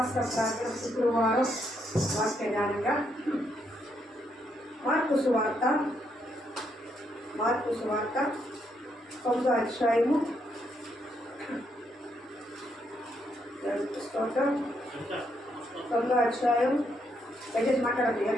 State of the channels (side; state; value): both; normal; correlation 0.76